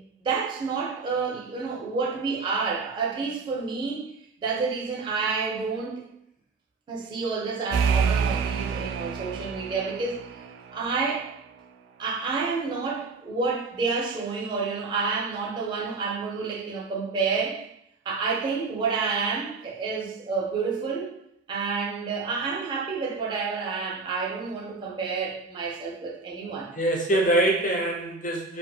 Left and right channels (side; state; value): left; quieter; 4.0 dB